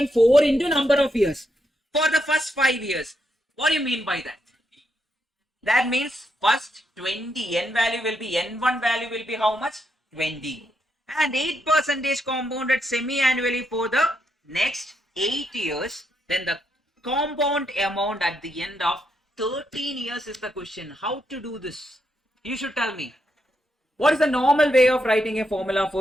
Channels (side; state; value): both; normal; correlation 0.80